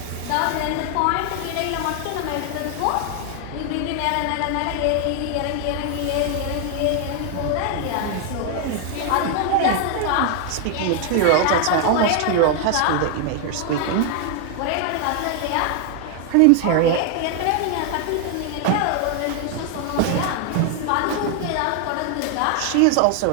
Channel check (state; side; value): different; both; correlation 0.00